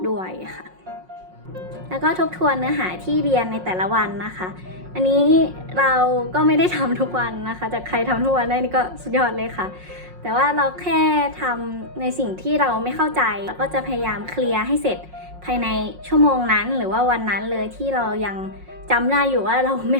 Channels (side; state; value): left; late; 5.5 ms